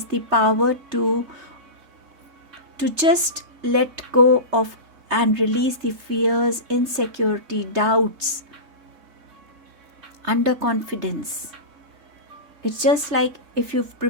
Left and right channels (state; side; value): late; left; 3.3 ms